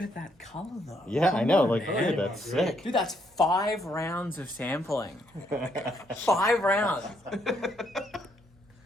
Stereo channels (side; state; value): both; normal; correlation 0.73